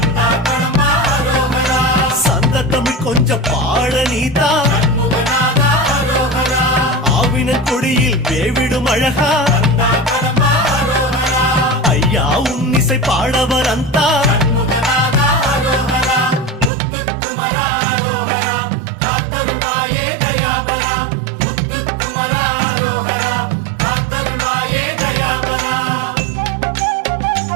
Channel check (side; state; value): left; drops out; at 16.7 s